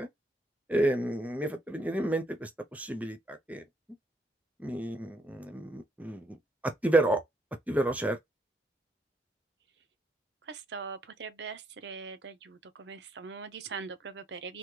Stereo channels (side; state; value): both; normal; correlation 0.74